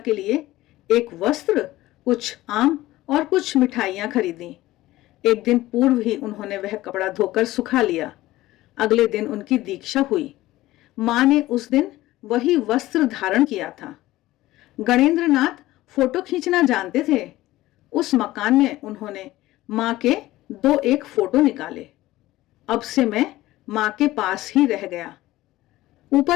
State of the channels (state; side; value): quieter; right; 16.8 dB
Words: लिए एक वस्त्र, कुछ आम और कुछ मिठाइयां खरीदी। एक दिन पूर्व ही उन्होंने वह कपड़ा धोकर सुखा लिया। अगले दिन उनकी दीक्षा हुई। मां ने उस दिन वही वस्त्र धारण किया था। गणेंद्र नाथ फोटो खींचना जानते थे। उस मकान में उन्होंने मां के 2-1 फोटो निकाले। अब से मैं मां के पास ही रह गया।